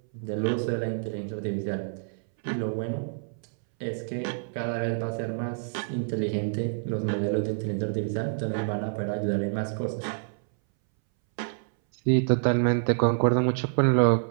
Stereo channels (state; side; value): silent; left; 60 dB below the other